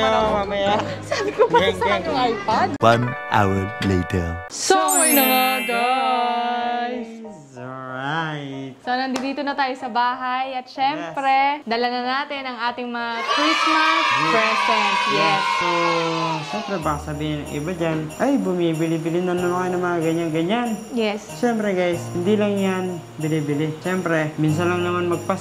ako. mamaya. Sabi ko, bakit isa lang yung iPad? 1 hour later. So, ayun na nga guys. Alright. So, nandito na tayo sa bahay at syempre, dala na natin ang ating mga Christmas present. Yes. So, siyempre baka sabihin ng iba dyan, ay, bumibili-bili na naman kayo ng mga ganyan-ganyan. Yes. Siyempre guys, hindi lang yan bili-bili. Siyempre, minsan lang naman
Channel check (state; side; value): identical; both; correlation 1.00